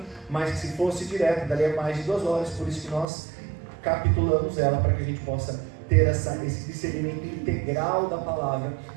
mas que se fosse direto, daria mais de 2 horas, por isso que nós capitulamos ela, para que a gente possa ter esse discernimento integral da palavra,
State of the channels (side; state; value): left; drops out; at 3.1 s